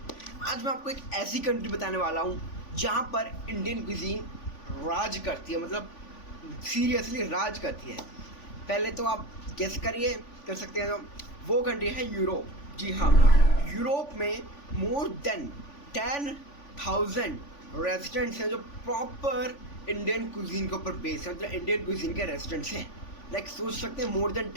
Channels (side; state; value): right; late; 3.5 ms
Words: आज मैं आपको एक ऐसी कंट्री बताने वाला हूँ जहाँ पर इंडियन कुजीन राज करती है, मतलब सीरियसली राज करती है। पहले तो आप गेस करिए, कर सकते हैं। तो वो कंट्री है यूरोप। जी हाँ, यूरोप में मोर देन 10,000 रेजिडेंट्स हैं जो प्रॉपर इंडियन कुजीन के ऊपर बेस है, मतलब इंडियन कुजीन के रेजिडेंट्स हैं। लाइक सोच सकते हैं मोर देन